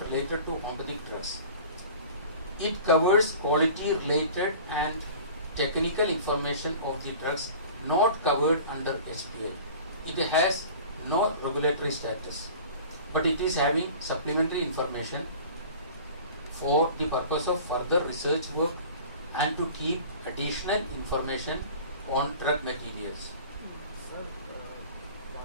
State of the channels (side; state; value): both; inverted; correlation -0.42